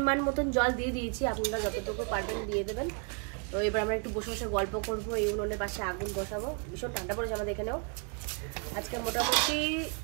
মতন জল দিয়ে দিয়েছি, আপনারা যতটুকু পারবেন দিয়ে দেবেন। তো এবার আমরা একটু বসে বসে গল্প করবো, এই উনুনের পাশে আগুন বসাবো। ভীষণ ঠান্ডা পড়েছে আমাদের এখানেও, আজকে মোটামুটি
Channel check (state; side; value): quieter; left; 38.0 dB